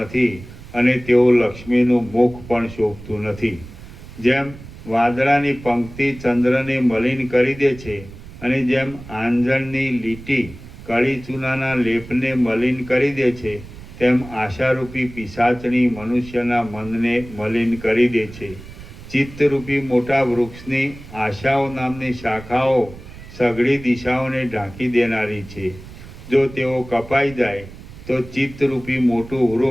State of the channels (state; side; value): noise; right; rumble, 16 dB below the sound